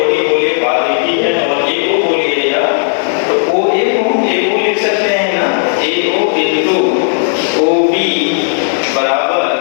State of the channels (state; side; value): silent; right; digital silence